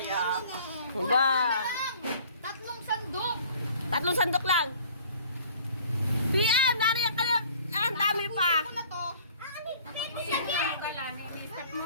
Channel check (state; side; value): inverted; both; correlation -0.52